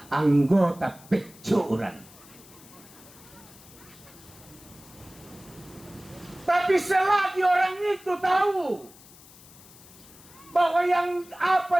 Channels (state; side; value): noise; left; hiss, 22 dB below the sound